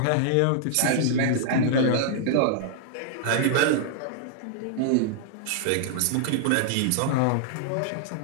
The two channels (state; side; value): different; both; correlation -0.01